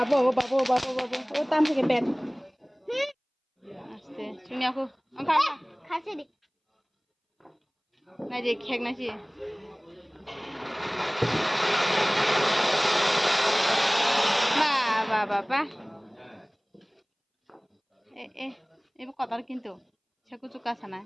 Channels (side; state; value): both; identical; correlation 1.00